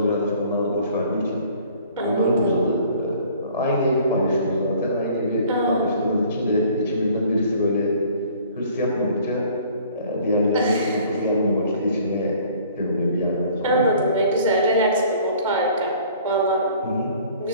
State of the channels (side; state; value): both; inverted; correlation -0.53